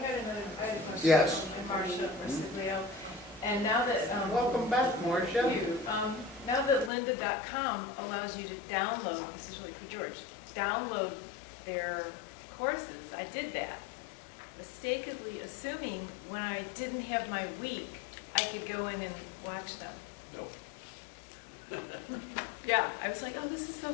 a question. Yes. I'm Marcia Marsiglio. And now that, Welcome back, Marcia. thank you. Now that lynda.com allows you to download, this is really for George, download their courses, I did that. Mistakenly assuming when I didn't have my week, I could go in and watch them. Yeah, I was like, oh, this is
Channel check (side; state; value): right; drops out; at 6.9 s